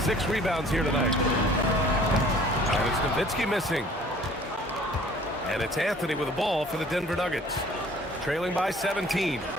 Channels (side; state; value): both; normal; correlation 0.52